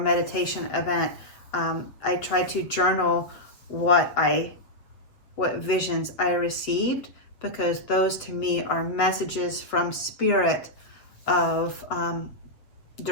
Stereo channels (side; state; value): right; late; 7.7 ms